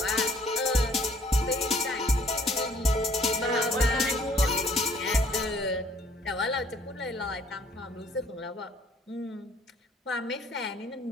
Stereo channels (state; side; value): normal; both; correlation 0.59